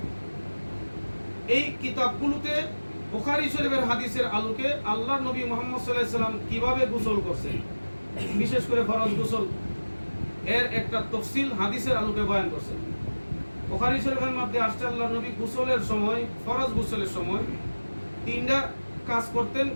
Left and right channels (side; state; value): both; inverted; correlation -1.00